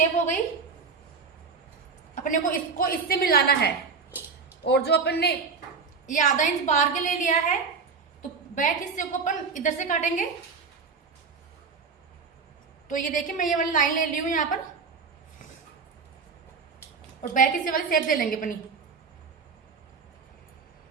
हो गई। अपने को इसको इससे मिलाना है। और जो अपन ने ये 1/2 इंच बाहर के ले लिया है, तो बैक हिस्से को अपन इधर से काटेंगे। तो ये देखिए, मैं ये वाली लाइन ले ली हूं यहां पर, और बैक हिस्से वाली शेप दे लेंगे अपनी।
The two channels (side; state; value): left; quieter; 5.1 dB